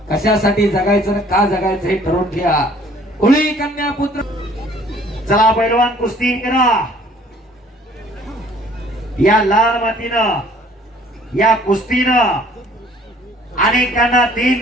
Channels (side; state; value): both; normal; correlation 0.56